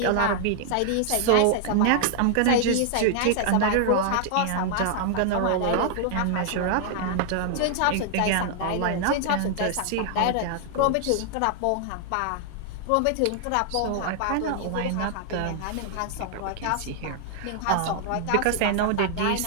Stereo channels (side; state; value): both; different; correlation 0.00